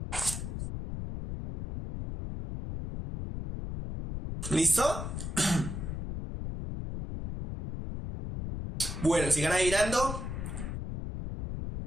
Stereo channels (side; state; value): left; noise; rumble, 5 dB below the sound